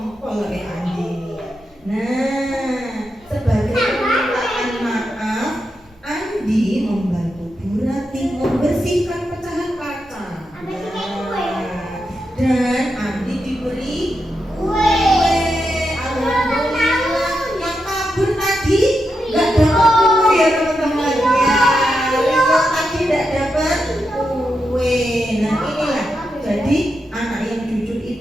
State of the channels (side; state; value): both; normal; correlation 0.86